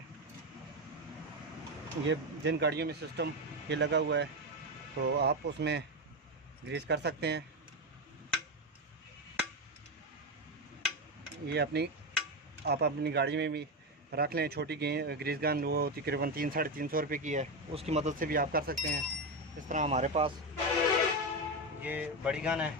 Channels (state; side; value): normal; both; correlation 0.13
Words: ये जिन गाड़ियों में सिस्टम ये लगा हुआ है तो आप उसमें ग्रीस कर सकते हैं। ये आप अपनी गाड़ी में भी रख लें। छोटी ग्रीस गन वो तकरीबन 300-350 रुपये की है, उसकी मदद से भी आप कर सकते हैं। इस तरह हमारे पास ये बड़ी गन है,